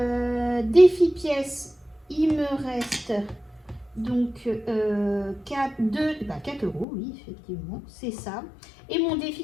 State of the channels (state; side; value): drops out; right; at 6.9 s